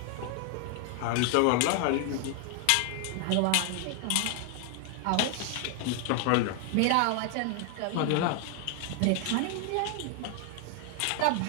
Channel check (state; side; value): different; both; correlation 0.00